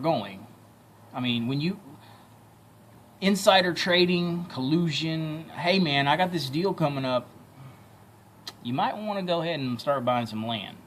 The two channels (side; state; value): both; identical; correlation 1.00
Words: I mean, when you insider trading, collusion, hey man, I got this deal coming up. You might want to go ahead and start buying some land,